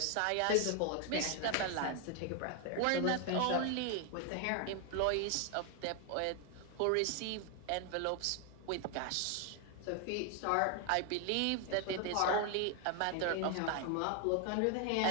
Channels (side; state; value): both; different; correlation 0.01